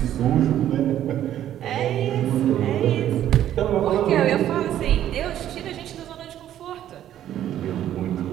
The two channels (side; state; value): left; quieter; 11.6 dB